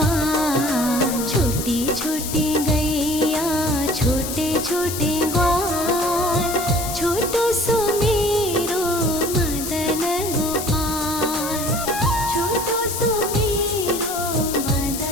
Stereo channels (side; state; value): left; noise; hiss, 6 dB below the sound